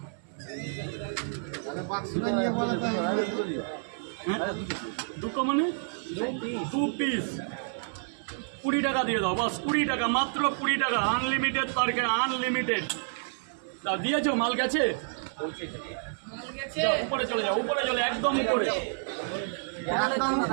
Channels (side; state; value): left; silent; digital silence